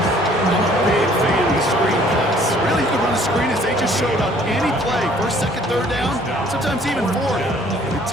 a big fan of the screen pass. Really, you can run a screen as they just showed on any play. First, second, third down, sometimes even fourth. It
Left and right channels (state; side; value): normal; both; correlation 0.58